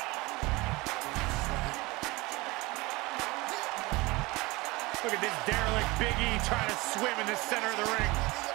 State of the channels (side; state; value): left; quieter; 22.8 dB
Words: Look at this derelict Big E trying to swim in the center of the ring.